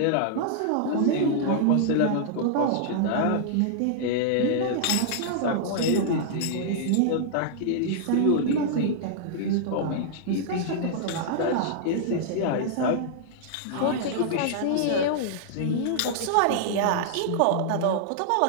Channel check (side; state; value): both; different; correlation -0.01